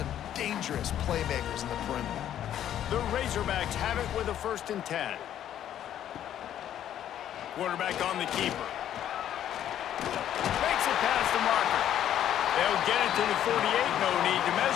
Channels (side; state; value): right; quieter; 10.9 dB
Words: dangerous playmakers in the perimeter. The Razorbacks have it with a 1st and 10. Quarterback on the keeper. Makes it past the marker. They'll get it to the 48. No need to